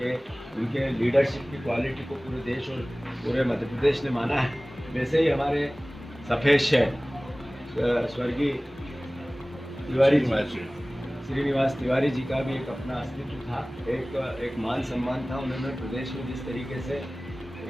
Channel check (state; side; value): normal; both; correlation 0.98